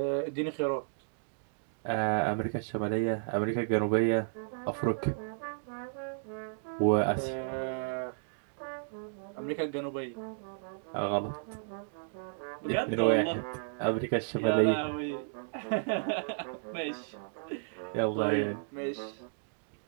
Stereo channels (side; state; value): left; silent; digital silence